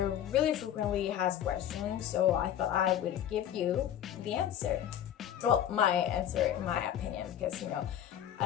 really frequently asked question, so I thought I would give you the answer. Well, my answer in my opinion, because I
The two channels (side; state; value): right; quieter; 10.5 dB